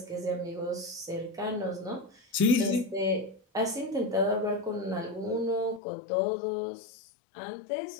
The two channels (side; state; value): right; drops out; at 5.8 s